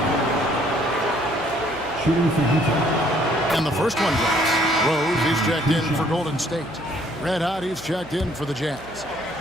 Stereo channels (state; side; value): noise; right; hum, 21 dB below the sound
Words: Shooting for Utah. And the first one drops. Rose, he's checked in for Golden State. Red Hot, he's checked in for the Jazz.